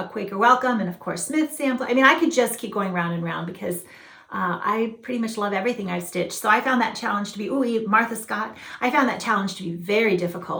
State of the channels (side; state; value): both; identical; correlation 1.00